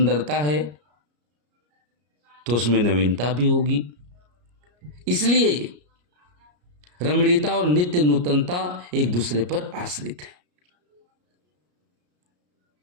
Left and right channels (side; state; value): left; late; 34 ms